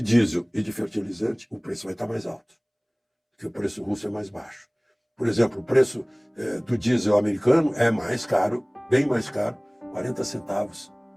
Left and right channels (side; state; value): both; identical; correlation 1.00